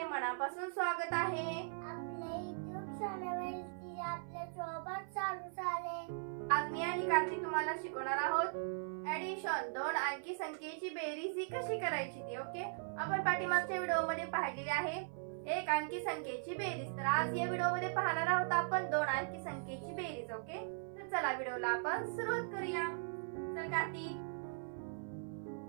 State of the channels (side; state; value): left; silent; 52 dB below the other